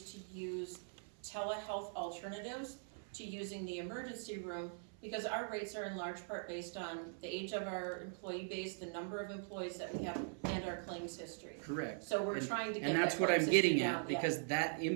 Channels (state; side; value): silent; left; 50 dB below the other